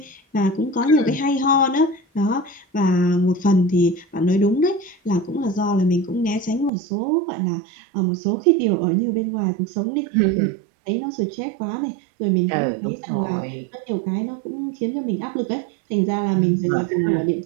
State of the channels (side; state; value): left; drops out; at 6.7 s